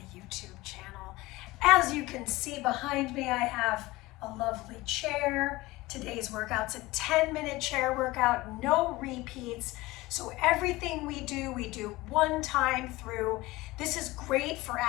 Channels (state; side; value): quieter; right; 20.0 dB